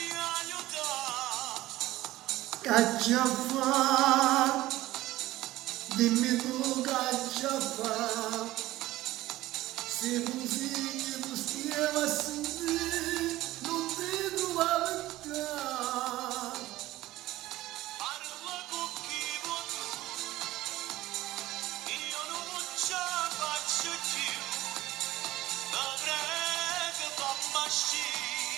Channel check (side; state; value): left; quieter; 16.6 dB